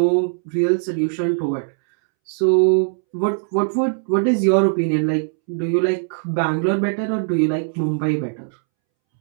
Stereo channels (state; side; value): silent; left; 66 dB below the other